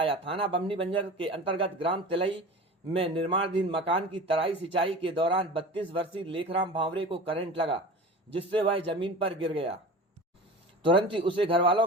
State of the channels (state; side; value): normal; both; correlation 0.35